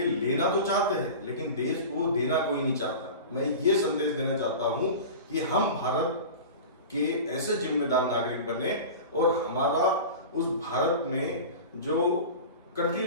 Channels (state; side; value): inverted; both; correlation -0.33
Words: तो चाहते हैं, लेकिन देश को देना कोई नहीं चाहता। मैं ये संदेश देना चाहता हूं कि हम भारत के ऐसे जिम्मेदार नागरिक बने और हमारा उस भारत में जो